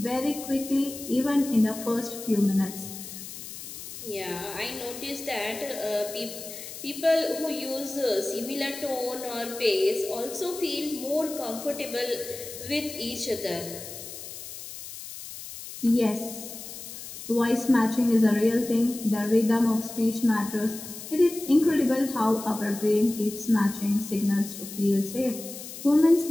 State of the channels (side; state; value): left; noise; hiss, 11 dB below the sound